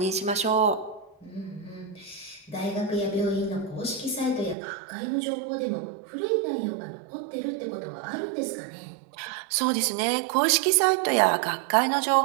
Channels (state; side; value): drops out; left; at 4.5 s